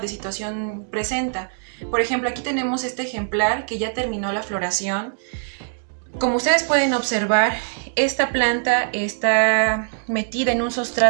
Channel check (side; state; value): left; silent; digital silence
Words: de situación presenta. Por ejemplo, aquí tenemos este ejemplar que ya terminó la floración. Como ustedes pueden observar, esta planta está metida en un